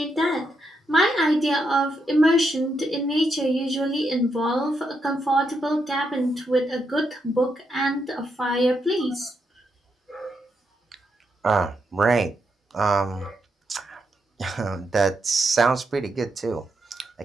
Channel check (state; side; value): normal; both; correlation 0.81